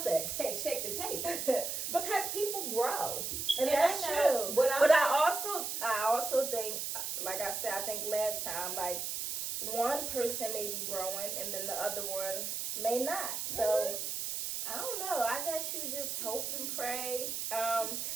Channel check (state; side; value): noise; right; hiss, 3 dB below the sound